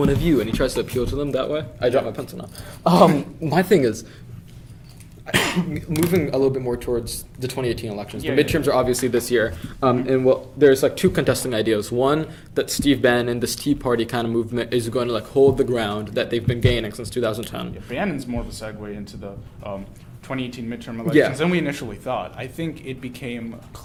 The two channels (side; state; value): both; identical; correlation 1.00